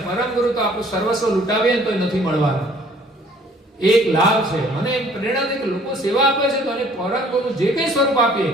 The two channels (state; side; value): normal; both; correlation 0.56